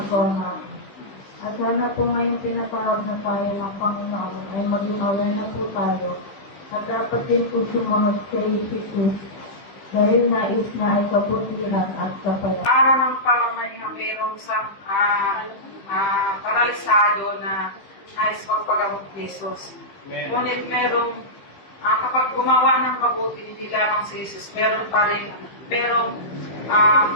natin. At sana po ngayong tinatawag na tayo ng Panginoon ay maging aware na po tayo. At dapat din po sumunod kay Jesus dahil nais na ay kaputihan at kapayapaan. Para ng pamamahinga mayroong sa paralisado na nais pagpagamot ni Jesus. Ngunit merong kapag gumawa ng mabuti, hindi lamang si Jesus, meron pa rin, merong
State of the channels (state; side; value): late; right; 15 ms